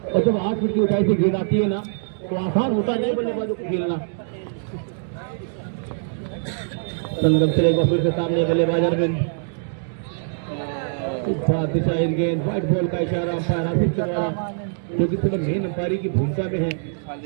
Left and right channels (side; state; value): left; silent; digital silence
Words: और जब 8 फीट की ऊंचाई से गेंद आती है ना तो आसान होता नहीं बल्लेबाजों को खेलना। संगम चलेगा फिर से सामने बल्लेबाज अरविंद, दिशाहीन गेंद, व्हाइट बॉल का इशारा अंपायर आसिफ के द्वारा, जो कि सिर्फ मेन अंपायरी की भूमिका में है।